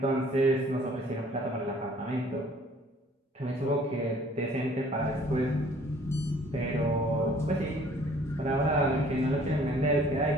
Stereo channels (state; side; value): normal; both; correlation 0.56